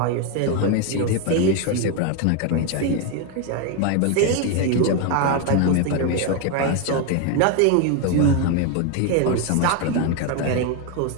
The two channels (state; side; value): different; both; correlation 0.01